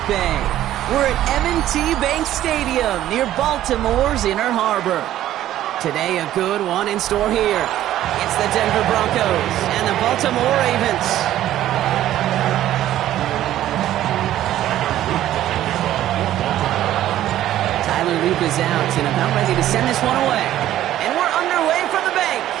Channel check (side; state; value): left; quieter; 13.0 dB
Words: Bay, we're at M&T Bank Stadium near Baltimore's Inner Harbor. Today, a good one in store here. It's the Denver Broncos and the Baltimore Ravens. Tyler Loop is out and about ready to send this one away. And we're underway from the bank.